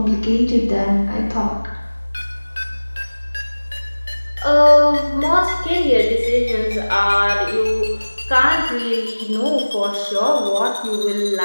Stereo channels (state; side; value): inverted; both; correlation -1.00